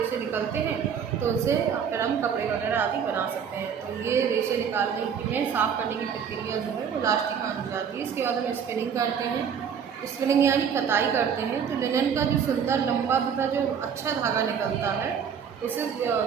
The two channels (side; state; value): left; quieter; 7.4 dB